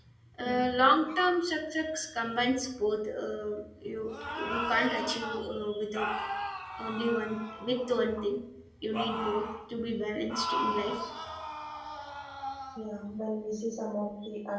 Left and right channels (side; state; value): both; identical; correlation 1.00